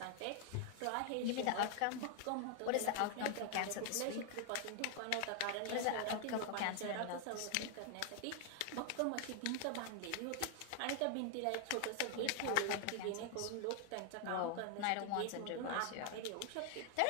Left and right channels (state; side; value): different; both; correlation 0.00